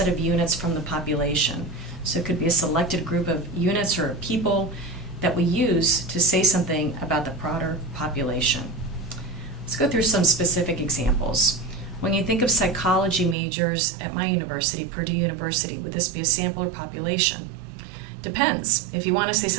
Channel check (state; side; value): drops out; left; at 13.4 s